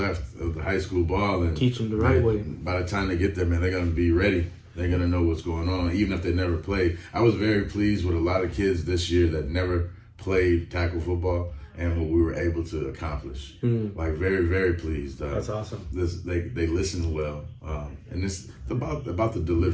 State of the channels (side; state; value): both; identical; correlation 1.00